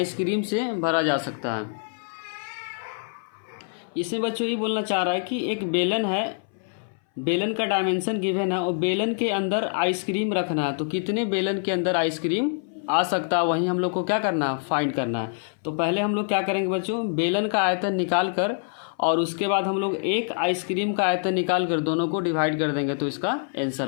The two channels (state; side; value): silent; right; 60 dB below the other